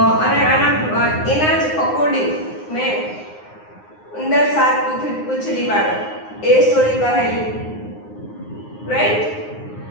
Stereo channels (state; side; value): late; right; 9.6 ms